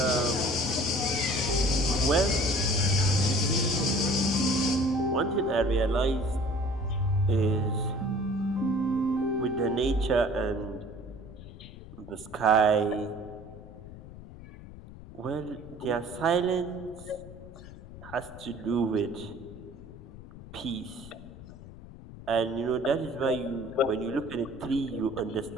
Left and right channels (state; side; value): noise; left; rumble, 16 dB below the sound